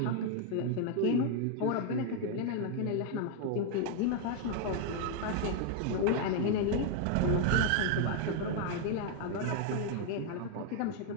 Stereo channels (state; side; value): different; both; correlation 0.00